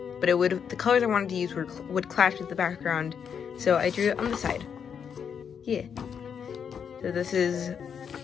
but the colors I wanted to use would clash with the background, so I drew it on the side. Yeah. So this is,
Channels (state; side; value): quieter; right; 7.3 dB